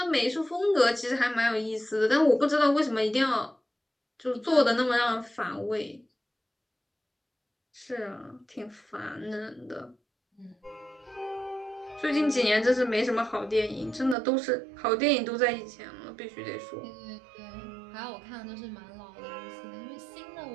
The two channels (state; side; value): drops out; left; at 14.2 s